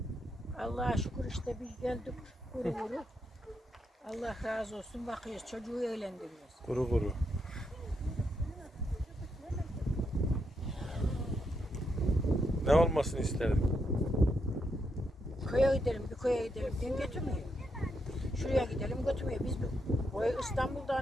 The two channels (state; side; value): normal; both; correlation 0.80